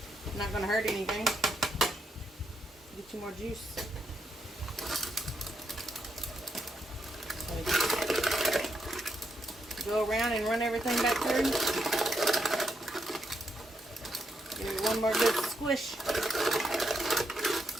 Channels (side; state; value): both; normal; correlation 0.80